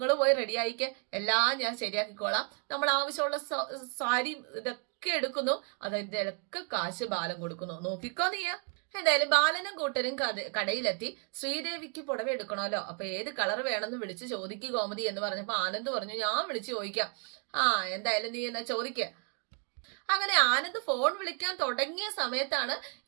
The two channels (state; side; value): quieter; left; 35.5 dB